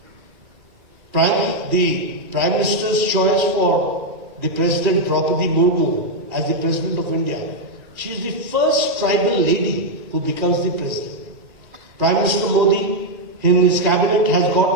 The Prime Minister's choice for the President Draupadi Murmu as the President of India, she is the first tribal lady who becomes the President. Prime Minister Modi in his cabinet has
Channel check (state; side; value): late; left; 2.4 ms